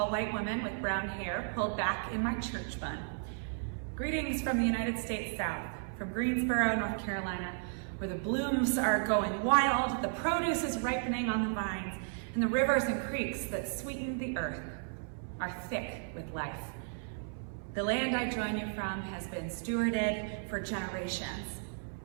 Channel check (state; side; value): silent; left; 55 dB below the other